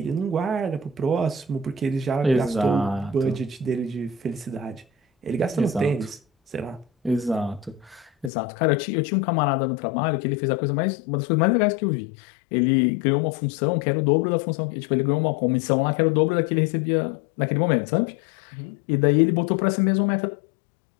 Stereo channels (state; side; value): drops out; right; at 8.3 s